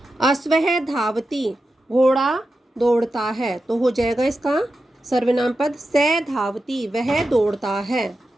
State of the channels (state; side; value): normal; both; correlation 0.90